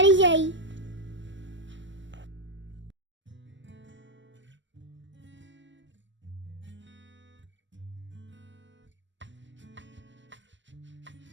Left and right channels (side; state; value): left; late; 0.54 ms